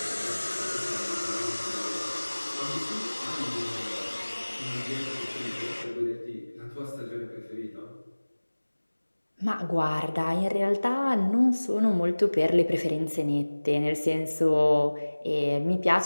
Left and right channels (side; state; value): both; inverted; correlation -1.00